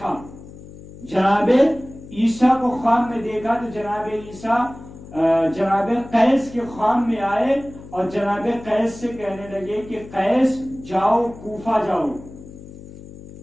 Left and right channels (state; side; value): noise; left; hum, 17 dB below the sound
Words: جناب عیسیٰ کو خواب میں دیکھا، تو جناب عیسیٰ جناب قیس کے خواب میں آئے اور جناب قیس سے کہنے لگے کہ قیس جاؤ کوفہ جاؤ،